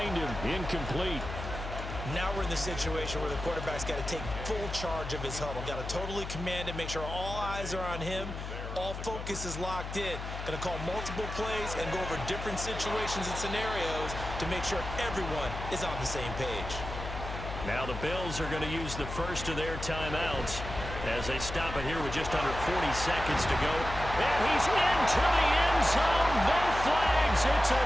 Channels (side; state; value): left; noise; hum, 7 dB below the sound